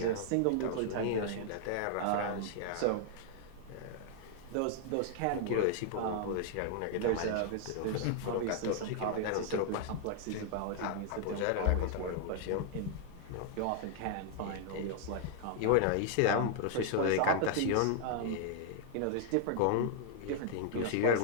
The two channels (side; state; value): both; different; correlation -0.01